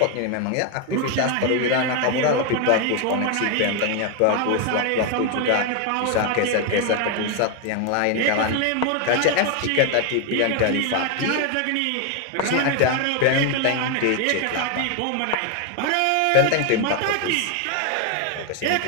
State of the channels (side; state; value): both; different; correlation 0.01